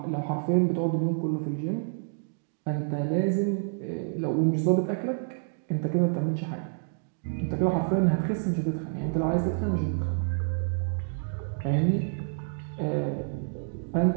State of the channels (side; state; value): left; silent; digital silence